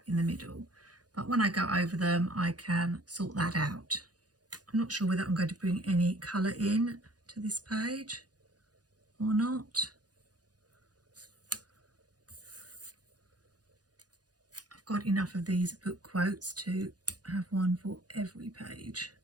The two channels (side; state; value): left; late; 0.69 ms